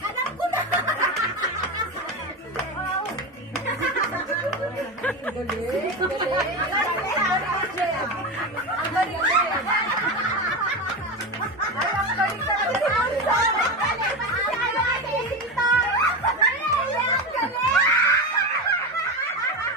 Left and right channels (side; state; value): both; normal; correlation 0.19